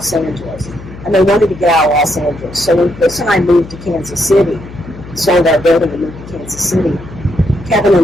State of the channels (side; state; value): left; noise; hum, 15 dB below the sound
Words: Angeles. and they wanted to get out of Los Angeles. So when Chris and I moved to Kansas City, sold our building and moved to Kansas City, Kevin